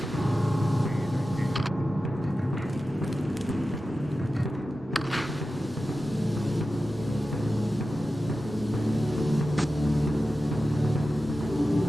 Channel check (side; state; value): both; normal; correlation 0.93